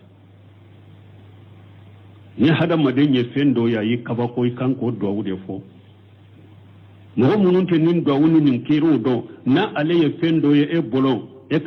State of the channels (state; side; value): identical; both; correlation 1.00